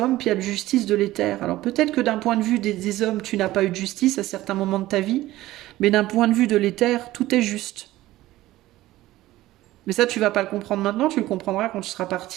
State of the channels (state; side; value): quieter; left; 16.3 dB